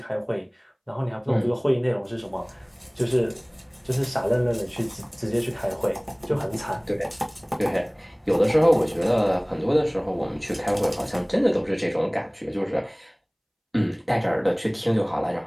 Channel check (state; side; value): identical; both; correlation 1.00